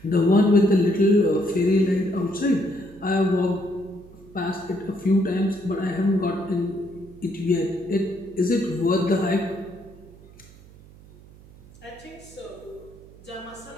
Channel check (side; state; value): right; noise; hum, 22 dB below the sound